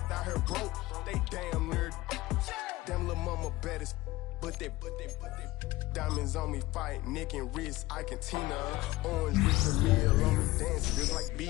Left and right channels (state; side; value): quieter; right; 18.7 dB